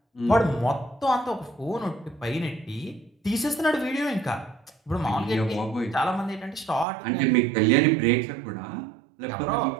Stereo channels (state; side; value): drops out; left; at 6.9 s